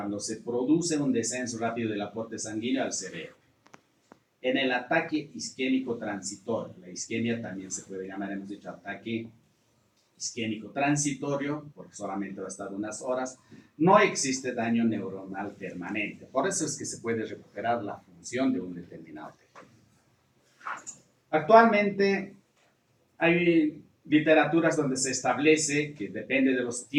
se produce un descenso rápido del aporte sanguíneo al cerebro. En el ataque isquémico transitorio, la isquemia también se puede llamar, hemos dicho, ataque isquémico transitorio, porque solamente va a estar unas horas, no existe daño neuronal permanente. Por eso es que se puede recuperar la función de un determinado tejido. Actualmente hay literaturas donde se establece que depende de los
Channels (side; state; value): both; identical; correlation 1.00